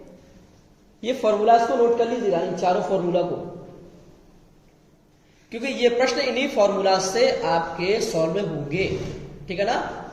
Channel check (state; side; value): identical; both; correlation 1.00